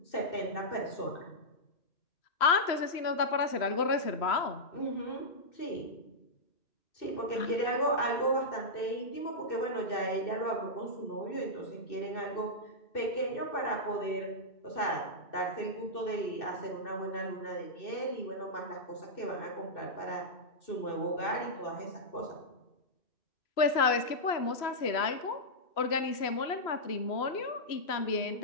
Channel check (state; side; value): late; right; 3.0 ms